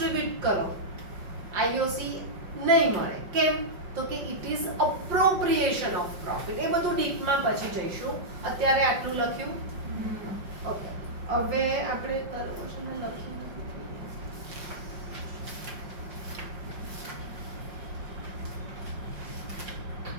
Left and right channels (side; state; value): left; late; 5.7 ms